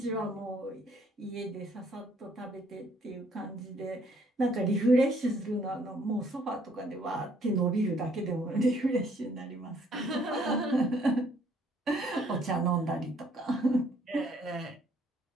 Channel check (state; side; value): normal; both; correlation 0.64